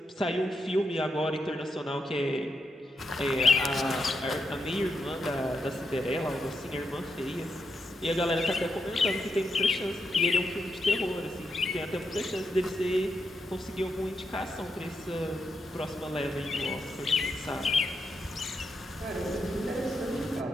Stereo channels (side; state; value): both; normal; correlation 0.84